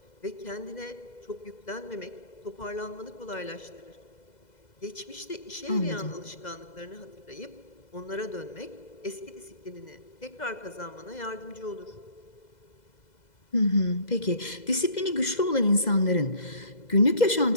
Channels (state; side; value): late; right; 2.0 ms